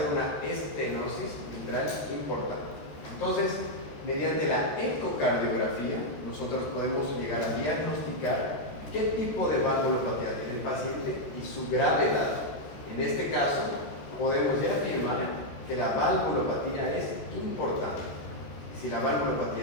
una estenosis mitral importante. Entonces, mediante la ecocardiografía, nosotros podemos llegar a diagnosticar qué tipo de valvulopatía tiene el paciente y su gravedad. En este caso, podemos ya afirmar que la valvulopatía es importante. Si la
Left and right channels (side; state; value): right; late; 14 ms